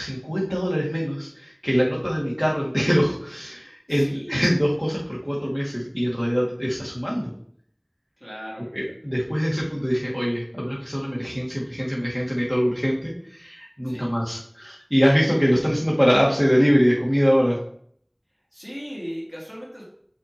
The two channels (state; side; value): identical; both; correlation 1.00